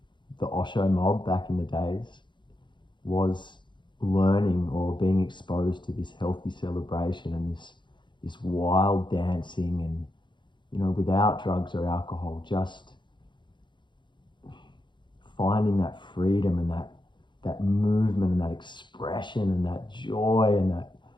the Osho mob back in the days was learning or being exposed to this healthy celebration and this wild dancing, and without drugs or alcohol, just finding that freedom and that movement and that expression and that joy and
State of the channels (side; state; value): right; late; 0.23 ms